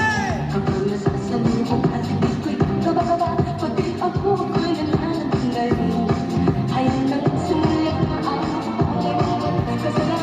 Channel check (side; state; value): both; identical; correlation 1.00